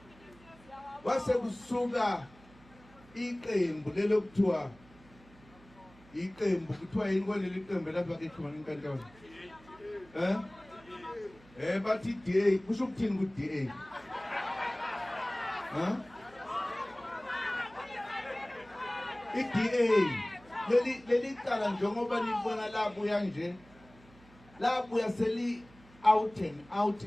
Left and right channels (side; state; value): right; noise; hum, 25 dB below the sound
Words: wase kusuka iqembu lelokuthiwa iqembu kuthiwa yini kwaleli qembu lapha ke khona inkantolo bathi DA kusho ukuthini ku DA iDA leli cala njengoba libona labuya nje labuya seli out and out